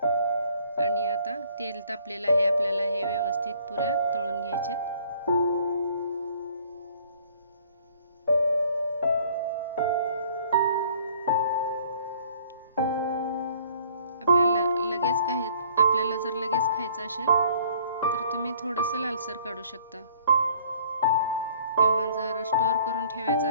आणि आता तेल तापलेलं आहे, आपल्याला हे व्यवस्थित पुऱ्या तळून घ्यायचेत। आपल्याला जर लगेच खायचं असेल तर तुम्ही थोडंसं लालसर काढू शकता, किंवा जर स्टोर करून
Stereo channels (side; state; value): both; inverted; correlation -0.57